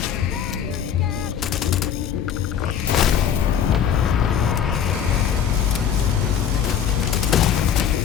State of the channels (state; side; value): quieter; right; 8.5 dB